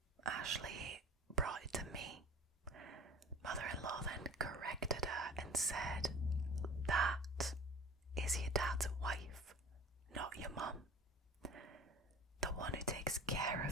Ashley brought it to me. Mother-in-law then corrected her and said, "That is your dad's wife, not your mum. The one who takes care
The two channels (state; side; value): normal; both; correlation 0.43